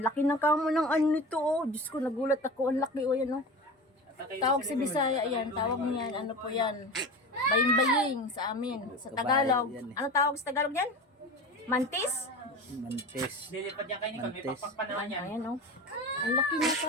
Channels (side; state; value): both; normal; correlation 0.30